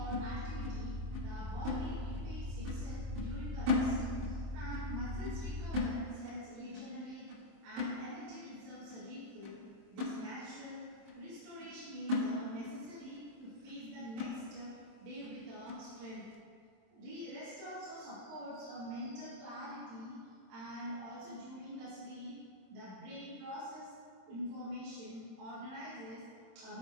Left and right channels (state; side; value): late; left; 27 ms